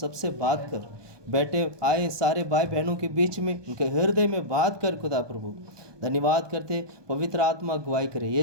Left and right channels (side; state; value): left; late; 1.2 ms